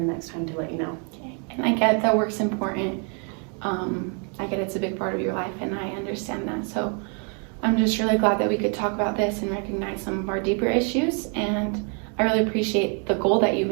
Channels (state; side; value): quieter; left; 38.3 dB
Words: next time to let you know. Okay. And I get that work's important. I get it's a big part of your life, and I understand that. So I'm just really glad that we could talk about this and recognize some of our deeper issues. And I really appreciate the goal that you